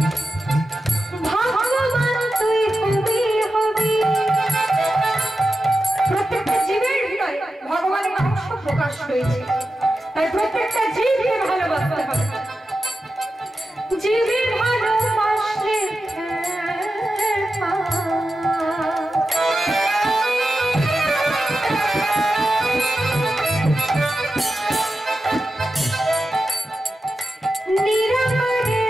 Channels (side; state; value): both; normal; correlation 0.91